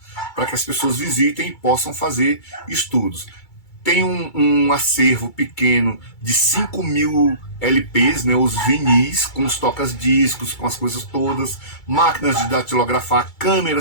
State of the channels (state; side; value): late; right; 2.3 ms